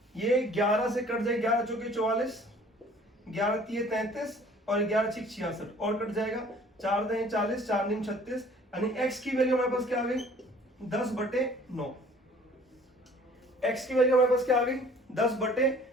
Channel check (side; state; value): both; normal; correlation 0.53